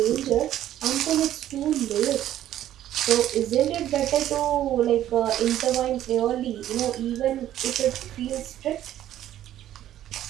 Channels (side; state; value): left; quieter; 12.3 dB